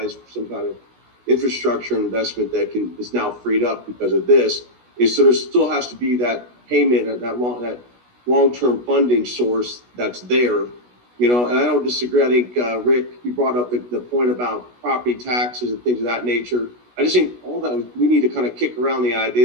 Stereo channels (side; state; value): left; late; 16 ms